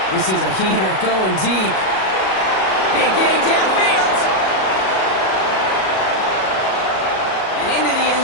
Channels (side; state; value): right; late; 37 ms